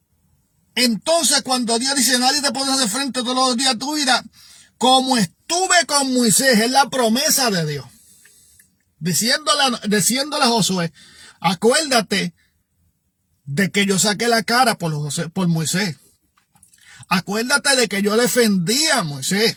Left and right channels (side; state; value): both; identical; correlation 1.00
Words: entonces, cuando Dios dice: nadie te podrá hacer frente todos los días de tu vida, como estuve con Moisés, es la promesa de Dios, diciéndole a Josué: acuérdate de que yo saqué la cara por Moisés. Acuérdate de que yo defendí a Moisés.